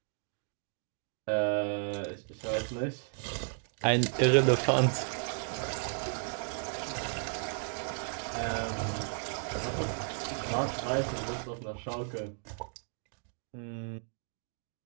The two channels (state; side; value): silent; left; 55 dB below the other